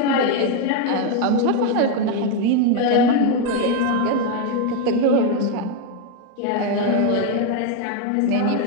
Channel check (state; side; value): different; both; correlation 0.01